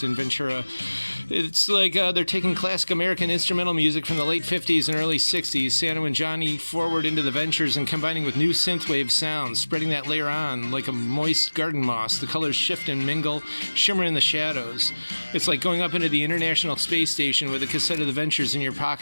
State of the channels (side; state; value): both; inverted; correlation -1.00